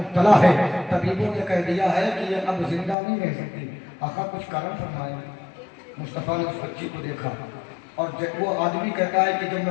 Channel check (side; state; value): right; drops out; at 3.0 s